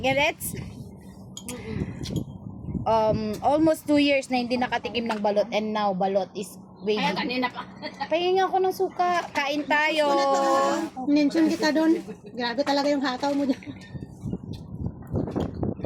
Emirates? Almost 2 years na hindi nakatikim ng balot and now balot is waiting. Ay, kanina pa. Pahingin ako ng suka. Kain tayo. Mention kita doon. Grabe talaga yung hataw mo dyan.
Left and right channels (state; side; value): identical; both; correlation 1.00